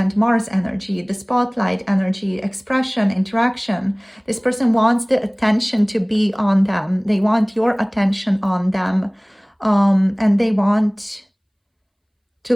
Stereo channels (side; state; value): both; identical; correlation 1.00